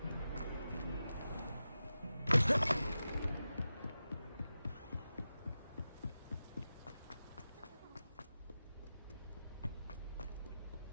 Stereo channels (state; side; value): inverted; both; correlation -0.92